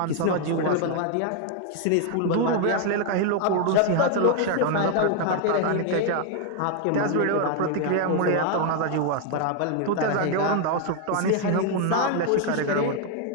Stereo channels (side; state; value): both; different; correlation 0.00